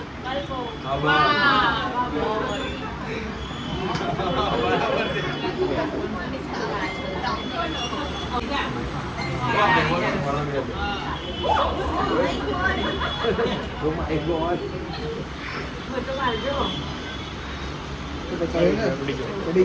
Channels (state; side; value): identical; both; correlation 1.00